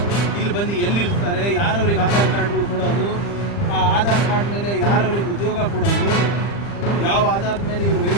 ಇಲ್ಲಿ ಬಂದು ಎಲ್ಲಿರ್ತಾರೆ, ಯಾರವ್ರಿಗೆ ಆಧಾರ್ ಕಾರ್ಡ್ಗಳು ಕೊಡೋದು, ಆ ಆಧಾರ್ ಕಾರ್ಡ್ ಮೇಲೆ ಯಾರವ್ರಿಗೆ ಉದ್ಯೋಗ ಕೊಡೋದು, ಯಾವ ಆಧಾರದ ಮೇಲೆ ಇವರು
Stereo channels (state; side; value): late; right; 40 ms